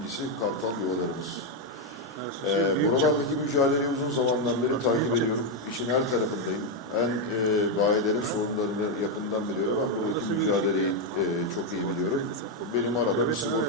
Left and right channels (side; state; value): both; normal; correlation 0.03